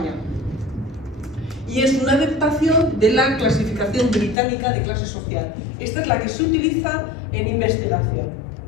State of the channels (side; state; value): right; drops out; at 4.4 s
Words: Y es una adaptación de la clasificación británica de clase social. Esta es la que se utiliza en investigación.